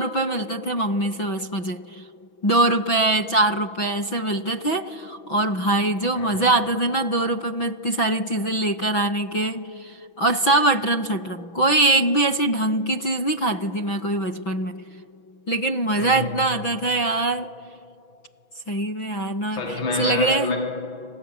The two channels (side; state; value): right; late; 6.0 ms